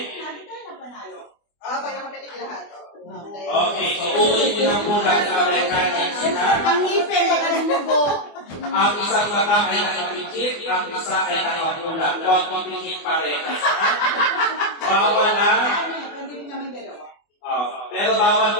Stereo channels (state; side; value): late; right; 24 ms